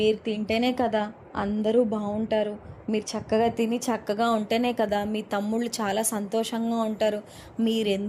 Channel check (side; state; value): both; identical; correlation 1.00